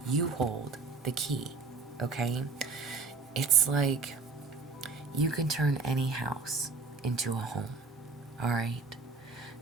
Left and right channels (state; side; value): quieter; left; 4.1 dB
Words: you hold the key, okay? It's like you can turn any house into a home, all right?